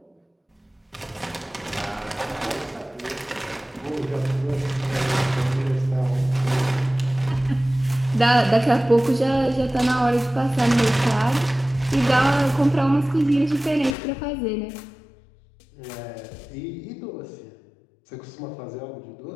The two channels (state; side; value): drops out; right; at 14.0 s